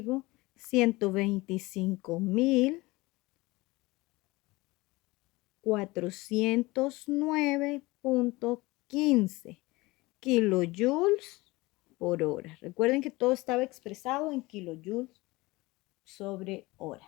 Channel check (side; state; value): right; quieter; 21.7 dB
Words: 125.409.15 kilojoules por hora. Recuerden que todo estaba expresado en kilojoules sobre